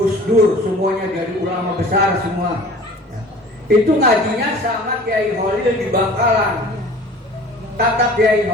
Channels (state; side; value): normal; both; correlation 0.45